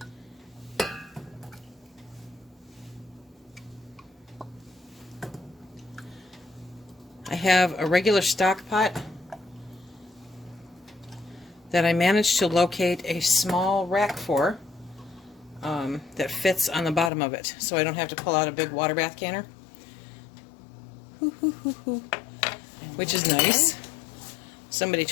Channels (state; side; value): drops out; right; at 17.1 s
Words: I have a regular stock pot that I managed to locate a small rack for that fits on the bottom of it, so I don't have to pull out a big water bath canner, which is nice. Somebody